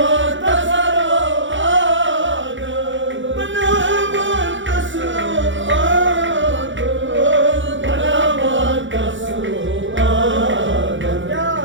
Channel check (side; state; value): left; late; 0.55 ms